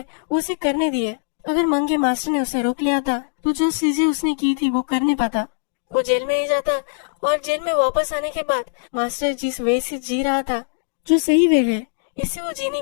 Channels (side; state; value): right; silent; digital silence